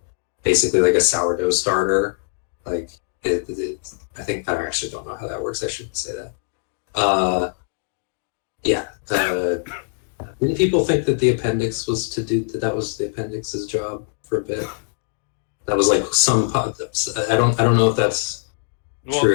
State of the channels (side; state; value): right; silent; 64 dB below the other